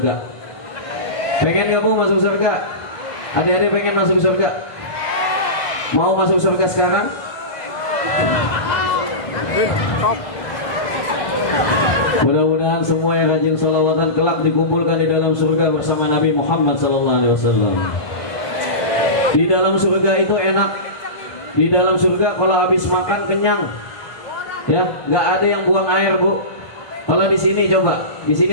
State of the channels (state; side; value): late; right; 1.5 ms